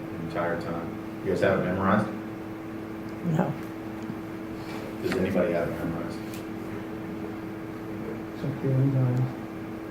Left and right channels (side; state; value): both; identical; correlation 1.00